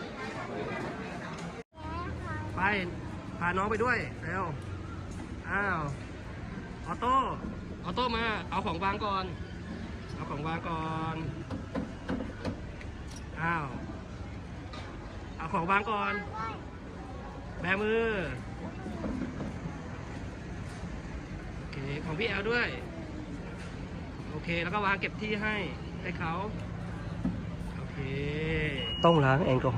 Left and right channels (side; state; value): both; identical; correlation 1.00